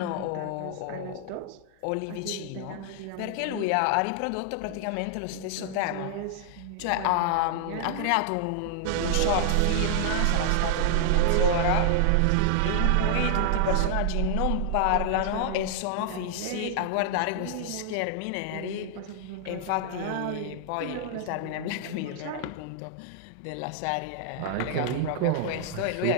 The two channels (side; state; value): both; different; correlation 0.00